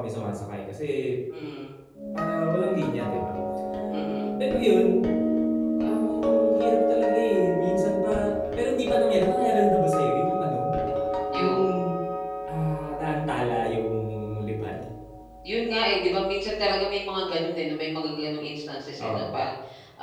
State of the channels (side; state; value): both; identical; correlation 1.00